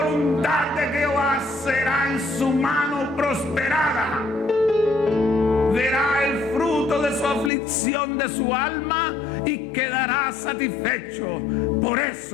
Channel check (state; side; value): drops out; right; at 7.5 s